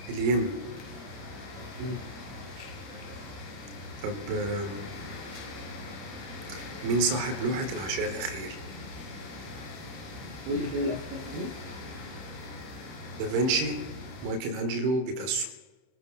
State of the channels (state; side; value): late; left; 30 ms